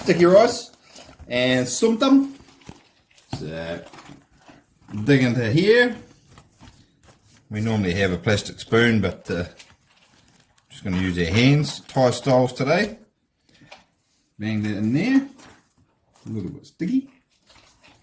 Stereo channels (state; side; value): identical; both; correlation 1.00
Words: rice and Som Tum. So, dig into here. We normally have a plastic spoon, but just going to use our hands, Thai styles today. Bang that in there. A little bit sticky.